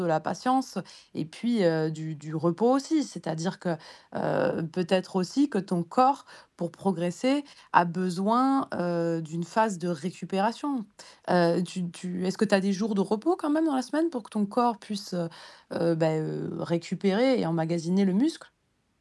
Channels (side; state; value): both; identical; correlation 1.00